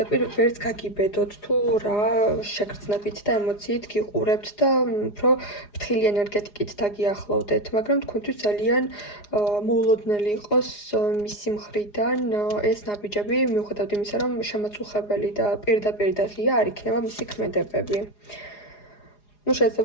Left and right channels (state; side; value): late; right; 4.9 ms